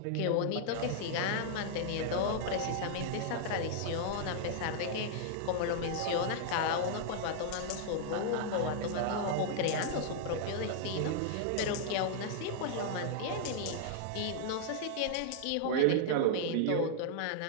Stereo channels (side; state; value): both; different; correlation -0.01